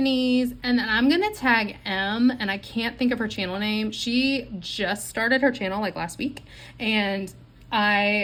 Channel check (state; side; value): identical; both; correlation 1.00